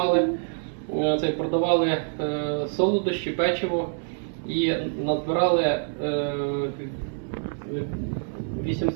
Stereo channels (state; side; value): silent; left; 61 dB below the other